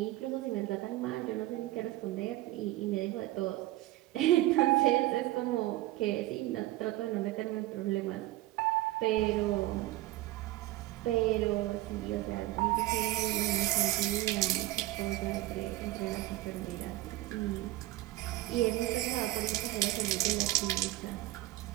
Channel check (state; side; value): quieter; left; 16.9 dB